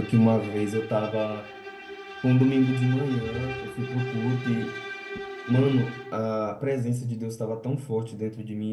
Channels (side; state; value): both; identical; correlation 1.00